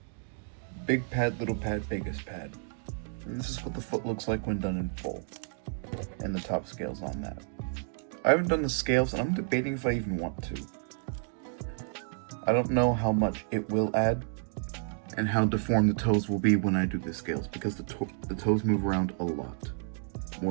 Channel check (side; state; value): left; silent; 57 dB below the other